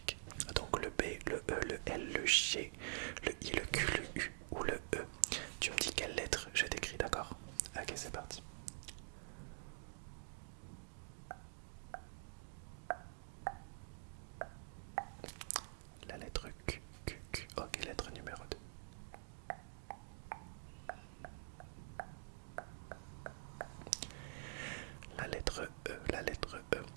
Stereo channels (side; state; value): left; silent; digital silence